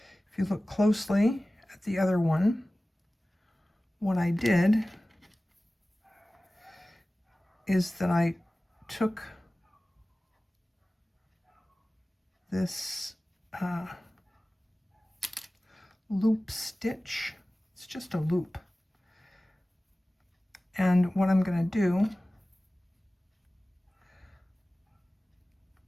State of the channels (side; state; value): both; normal; correlation 0.97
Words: if you look closely at the other one, what I did is that I took this loop stitch. It's just a loop. And what I'm going to do